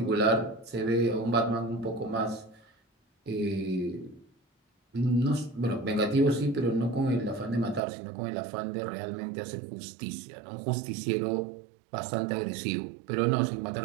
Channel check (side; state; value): left; drops out; at 7.8 s